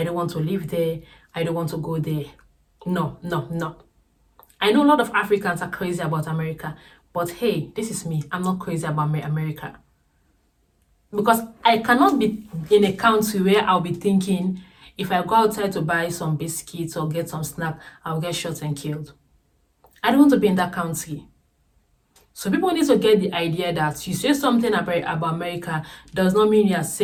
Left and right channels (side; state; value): both; identical; correlation 1.00